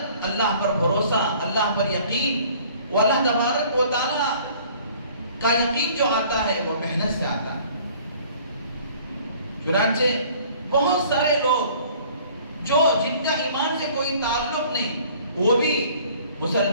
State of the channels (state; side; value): inverted; both; correlation -0.53